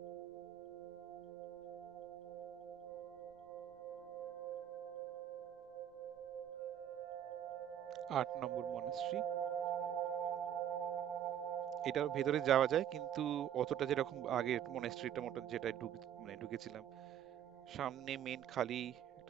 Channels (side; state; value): left; quieter; 10.1 dB